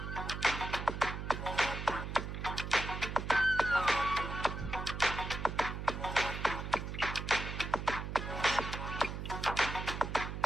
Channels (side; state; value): right; noise; hum, 5 dB below the sound